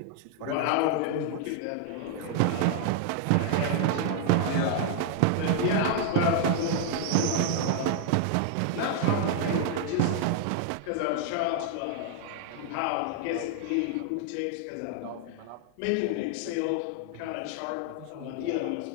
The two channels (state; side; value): different; both; correlation 0.00